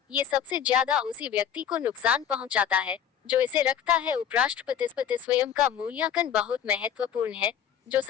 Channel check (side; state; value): right; quieter; 8.9 dB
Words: ये सबसे ज्यादा उसी व्यक्ति को नुकसान पहुंचाता है जो इसे रखता है। उपराष्ट्रपति स्वयं का मूल्यांकन बहुत महत्वपूर्ण है। जो